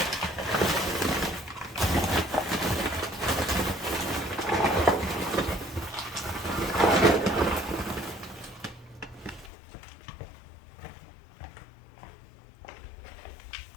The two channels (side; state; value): right; drops out; at 9.5 s